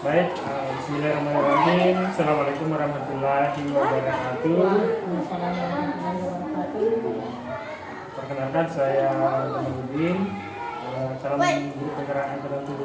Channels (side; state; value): both; identical; correlation 1.00